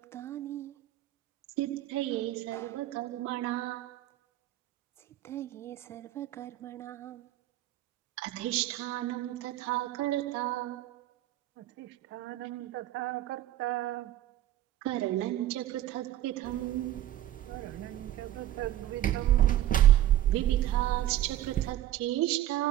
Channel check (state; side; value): quieter; left; 13.2 dB